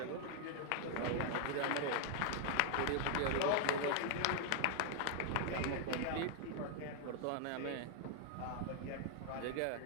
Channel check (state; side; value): different; both; correlation 0.00